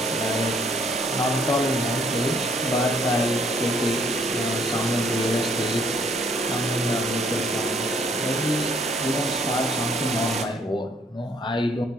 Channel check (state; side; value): normal; both; correlation 0.64